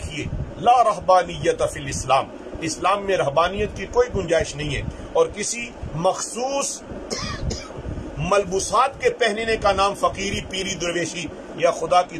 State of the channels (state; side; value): identical; both; correlation 1.00